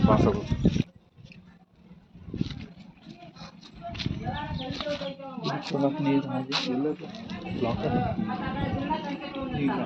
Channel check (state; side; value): identical; both; correlation 1.00